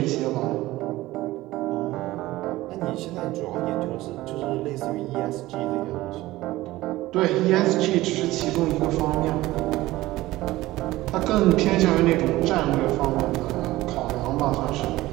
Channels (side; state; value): left; quieter; 17.5 dB